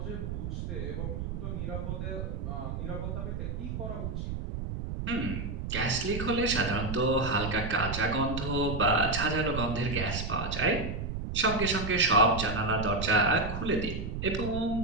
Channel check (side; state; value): right; noise; rumble, 4 dB below the sound